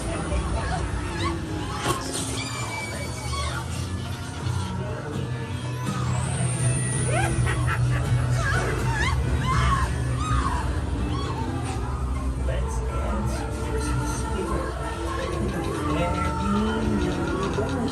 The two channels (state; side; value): identical; both; correlation 1.00